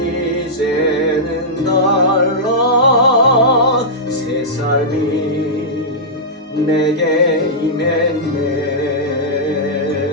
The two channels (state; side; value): normal; both; correlation -0.12